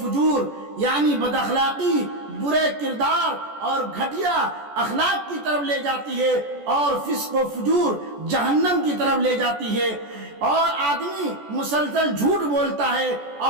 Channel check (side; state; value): left; late; 14 ms